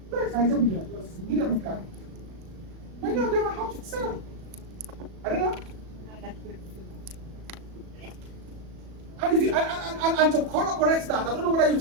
That's 19 billion. That's a million gallons. Many of them are how to sell. I don't know. And if you and to correct that, I don't know whether you've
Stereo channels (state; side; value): late; left; 37 ms